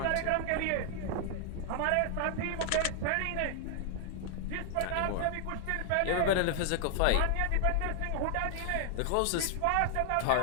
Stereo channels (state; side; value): different; both; correlation 0.00